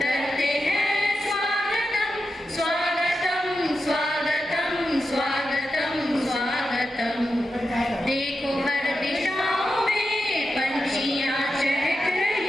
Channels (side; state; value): both; normal; correlation 0.89